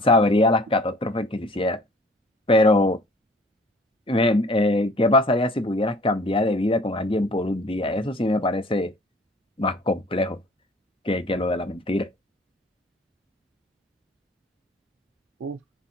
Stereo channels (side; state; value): both; normal; correlation 0.52